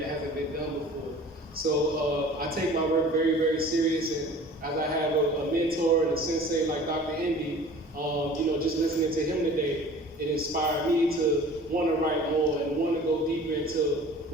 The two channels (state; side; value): normal; both; correlation 0.45